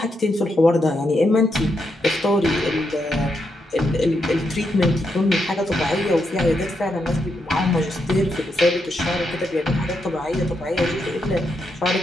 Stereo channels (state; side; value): normal; both; correlation 0.82